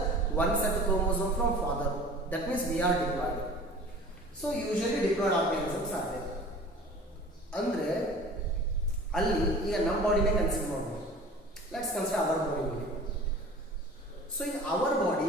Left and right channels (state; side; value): normal; both; correlation 0.43